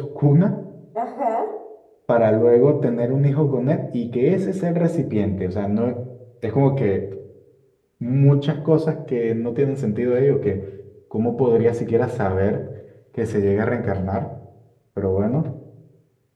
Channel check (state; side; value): identical; both; correlation 1.00